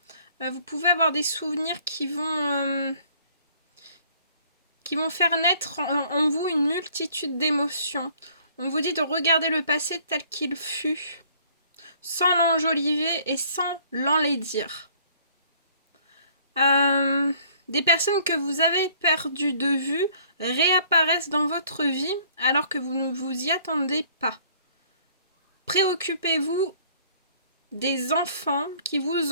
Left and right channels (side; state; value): both; inverted; correlation -0.58